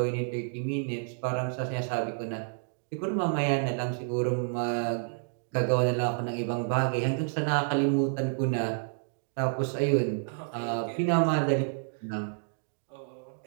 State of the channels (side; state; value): left; silent; digital silence